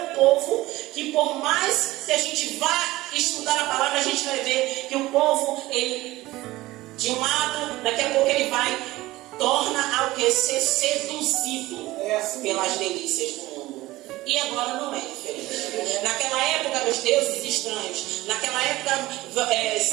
povo que, por mais que a gente vá estudar a palavra, a gente vai ver que o povo, ele, de um lado, daqui a pouco ele vai torna ao que ser seduzido pelas delícias do mundo. E agora não é diferente. Naquela época, os deuses estranhos, naquela época,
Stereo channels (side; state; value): left; quieter; 18.1 dB